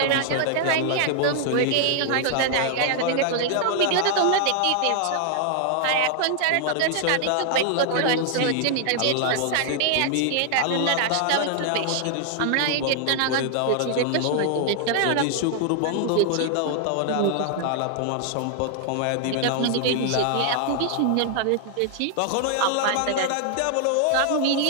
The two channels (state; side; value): different; both; correlation 0.00